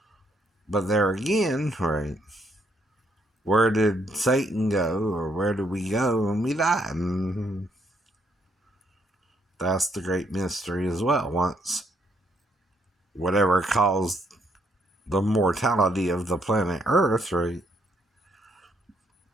But there again, right? Where did Satan go, or where did we go when we die? That's the great mystery as well. Once whatever caused the mortality of the planet Earth, right?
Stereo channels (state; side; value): normal; both; correlation 0.72